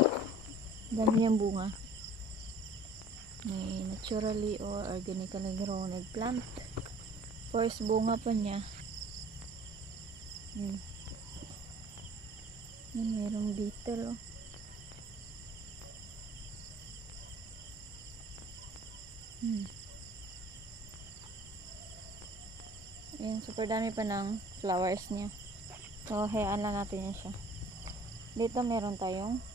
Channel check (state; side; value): normal; both; correlation 0.50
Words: dami yung bunga. May naturally or organically grown eggplant, first bunga pa niya. Yan, yan merong beetle oh. Ayan, super dami pa ng flowers niya. So hayaan lang natin yan siya. Dito meron tayong